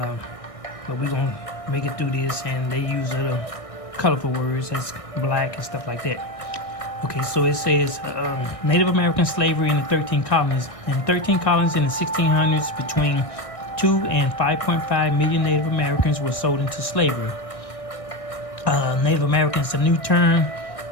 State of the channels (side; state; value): right; late; 1.6 ms